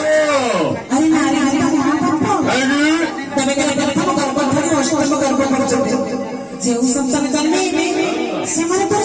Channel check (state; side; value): identical; both; correlation 1.00